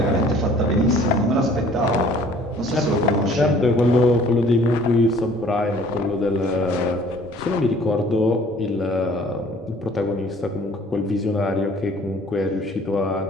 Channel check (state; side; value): normal; both; correlation 0.54